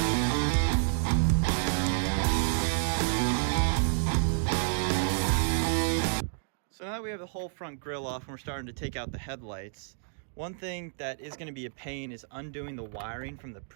So now that we have the whole front grille off and we're starting to take out the headlights, one thing that is going to be a pain is undoing the wiring from the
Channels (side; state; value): left; silent; digital silence